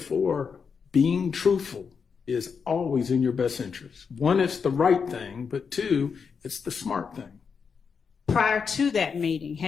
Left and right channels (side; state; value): right; quieter; 6.0 dB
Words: being truthful is always in your best interest. One, it's the right thing, but two, it's the smart thing. Prior to that meeting,